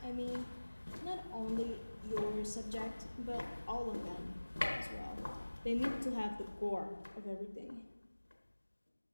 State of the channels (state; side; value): inverted; both; correlation -1.00